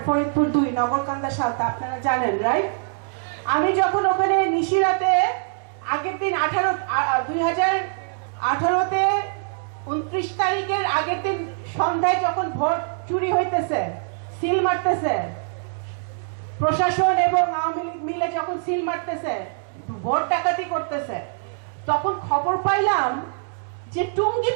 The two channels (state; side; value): silent; left; 62 dB below the other